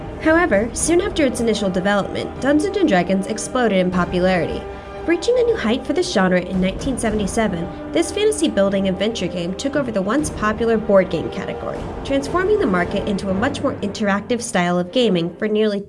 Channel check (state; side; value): identical; both; correlation 1.00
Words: However, soon after its initial development, Dungeons & Dragons exploded in popularity. Reaching a new height for this genre in 1977, this fantasy building adventure game took over the once popular board game category, transforming the market into a much more interactive style of gaming for nearly